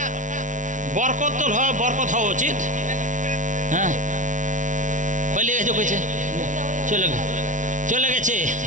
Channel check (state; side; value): late; left; 0.37 ms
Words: বরকত তো বরকত হওয়া উচিত। হ্যাঁ বলে গেছে কইছে চলে গেছে